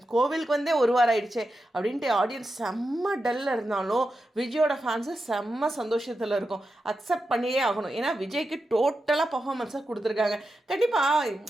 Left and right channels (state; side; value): normal; both; correlation 0.89